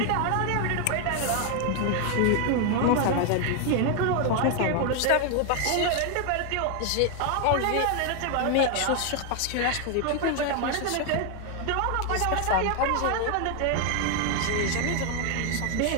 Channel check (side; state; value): both; different; correlation 0.01